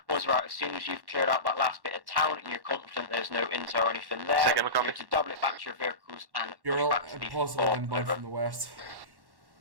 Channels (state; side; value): late; left; 1.1 ms